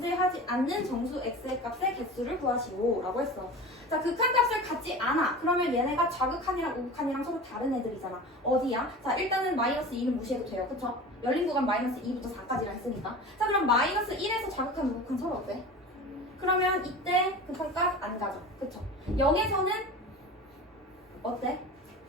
않는 정수 x의 값의 개수를 구하시오 라고 했어. 자, 극한값을 갖지 않아. 그러면 얘네가 좌극한이랑 우극한이랑 서로 다른 애들이잖아. 어디야? 자, 일단은 마이너스 2는 무시해도 돼요. 그쵸? 열린 구간 마이너스 2부터 4까지라 했으니까. 자, 그럼 마이너스 1에서 좌극한 우극한 서로 어때? 그러면 이때 극한값 안 가죠. 그쵸? 0에서는 어때?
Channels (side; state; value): both; normal; correlation 0.34